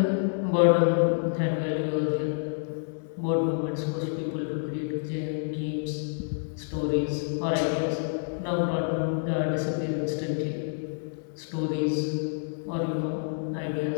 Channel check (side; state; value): right; silent; digital silence